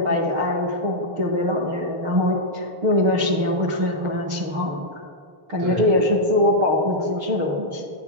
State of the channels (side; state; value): left; late; 6.6 ms